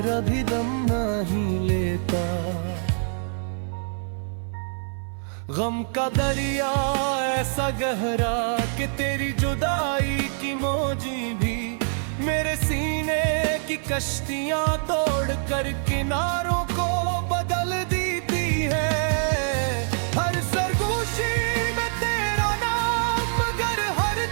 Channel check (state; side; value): silent; left; 56 dB below the other